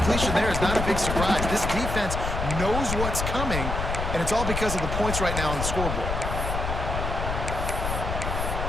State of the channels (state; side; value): noise; left; rumble, 3 dB below the sound